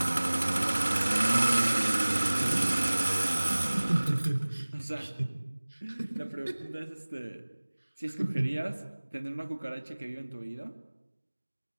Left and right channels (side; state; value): both; inverted; correlation -1.00